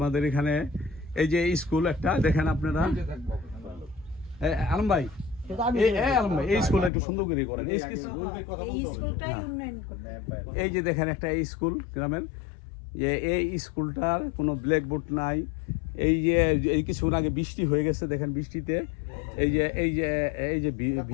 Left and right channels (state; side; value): drops out; right; at 6.9 s